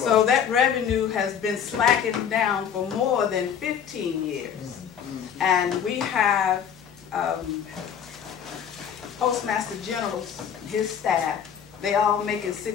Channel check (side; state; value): right; quieter; 8.2 dB